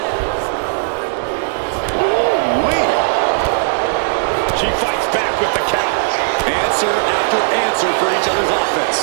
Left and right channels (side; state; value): left; silent; digital silence